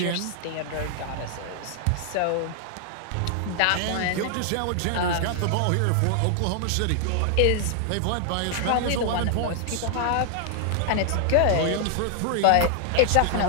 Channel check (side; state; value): both; different; correlation 0.00